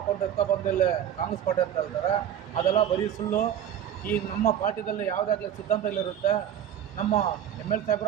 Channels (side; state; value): left; quieter; 9.9 dB